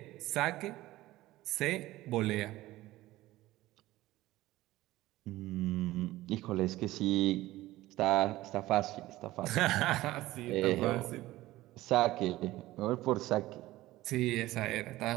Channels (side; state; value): left; quieter; 17.0 dB